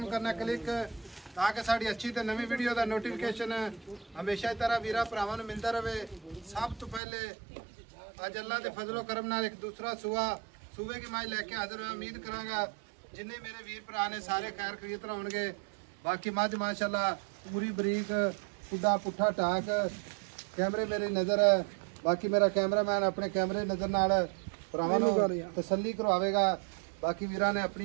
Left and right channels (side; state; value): left; drops out; at 7.0 s